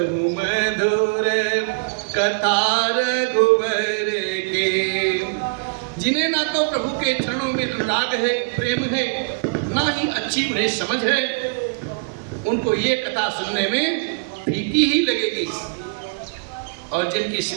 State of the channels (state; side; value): quieter; left; 32.7 dB